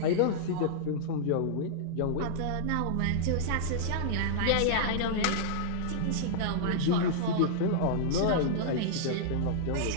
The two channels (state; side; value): different; both; correlation -0.02